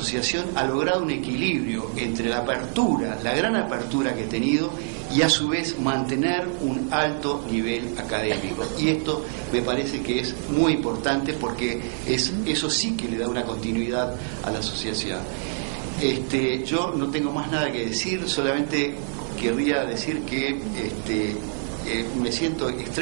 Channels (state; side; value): silent; left; 62 dB below the other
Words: ha logrado un equilibrio entre la apertura, la gran apertura que ha tenido, y a su vez mantener un alto nivel académico. Y esto me parece que es muy importante porque eso sí que le da una continuidad a la asociación. Yo no tengo más nada que decir, solamente querría decir que me siento